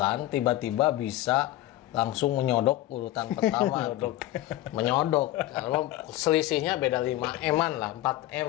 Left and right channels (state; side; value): quieter; right; 15.4 dB